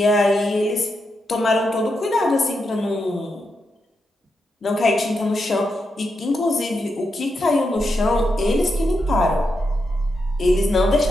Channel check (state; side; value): normal; both; correlation 0.84